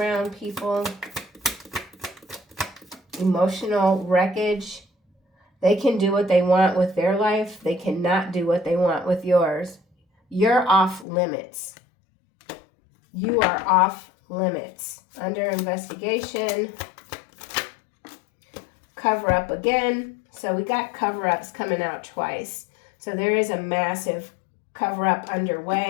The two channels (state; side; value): drops out; right; at 11.1 s